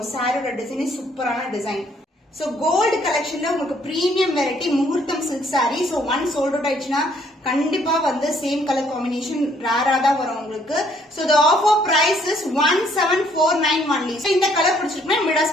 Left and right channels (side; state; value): both; normal; correlation 0.66